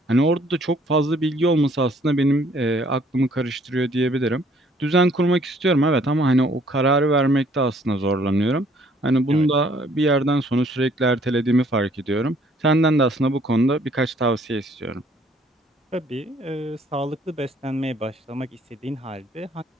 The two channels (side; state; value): both; normal; correlation 0.61